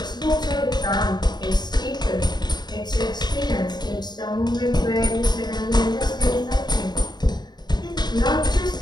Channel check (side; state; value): right; late; 0.20 ms